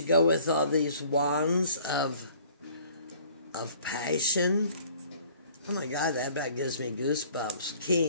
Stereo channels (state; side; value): inverted; both; correlation -0.53